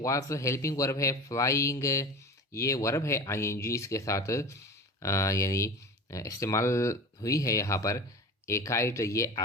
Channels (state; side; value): normal; both; correlation 0.33